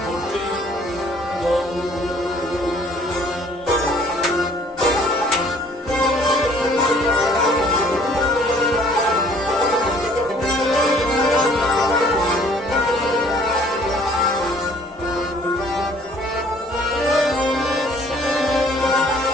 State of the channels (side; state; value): both; normal; correlation 0.57